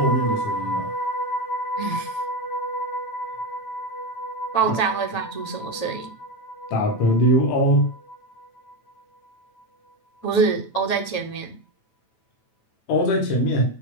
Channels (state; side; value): late; right; 9.1 ms